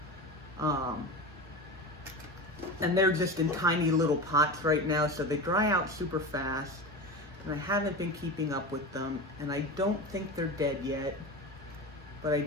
and they're just in tiny little pots right now, so they dry out super fast, and I haven't been keeping up with them, and I don't think they're dead yet, but I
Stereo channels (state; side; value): normal; both; correlation 0.26